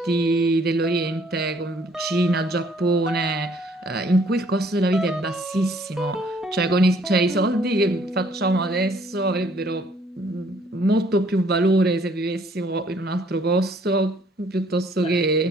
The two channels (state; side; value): normal; both; correlation 0.62